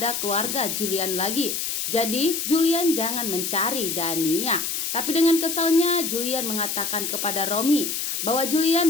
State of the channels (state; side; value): noise; left; hiss, 2 dB below the sound